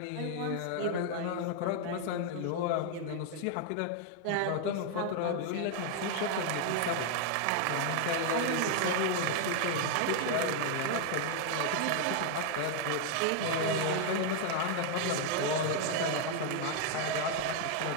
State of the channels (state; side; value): different; both; correlation 0.00